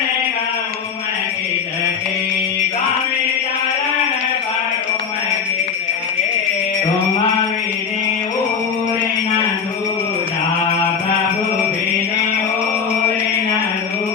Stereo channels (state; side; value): quieter; right; 6.4 dB